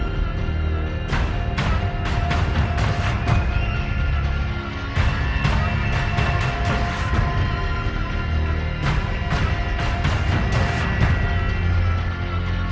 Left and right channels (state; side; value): identical; both; correlation 1.00